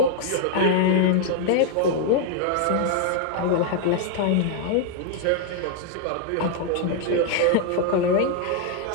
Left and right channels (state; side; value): different; both; correlation 0.00